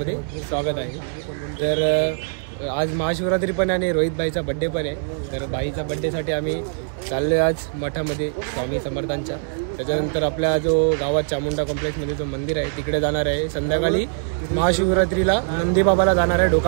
स्वागत आहे. तर आज महाशिवरात्री पण आणि रोहित भाईचा बड्डे पण आहे. तर बाईचा बड्डेसाठी आम्ही चाललो आज मठामध्ये स्वामी समर्थांच्या. त्याच्यानंतर आपल्या जो गावात चामुंडा कॉम्प्लेक्समध्ये जो मंदिर आहे तिकडे जाणार आहे. संध्याकाळी महाशिवरात्रीला नंदीबाबाला जाणार आहे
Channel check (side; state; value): left; silent; 58 dB below the other